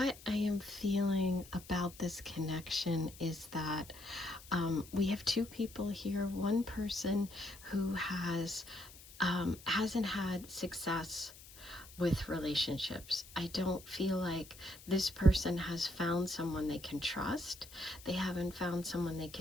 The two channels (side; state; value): left; noise; hiss, 19 dB below the sound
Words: I am feeling about this connection is that we have 2 people here. One person who hasn't had success with relationships. I don't feel like this person has found someone they can trust. They haven't found someone they